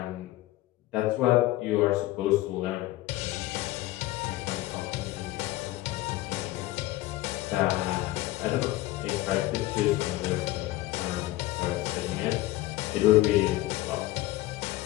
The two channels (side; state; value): right; quieter; 17.1 dB